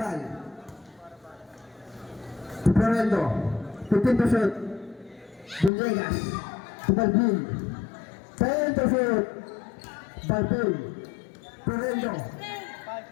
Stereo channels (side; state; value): right; drops out; at 5.7 s